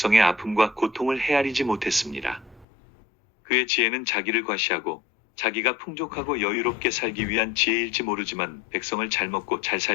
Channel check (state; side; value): drops out; right; at 2.7 s